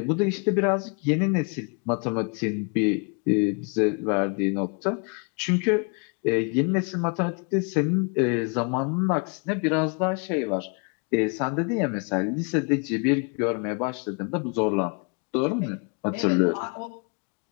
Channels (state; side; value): quieter; right; 35.9 dB